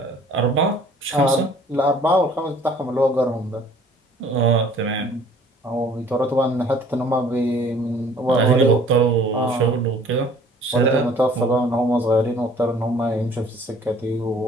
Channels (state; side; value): normal; both; correlation 0.54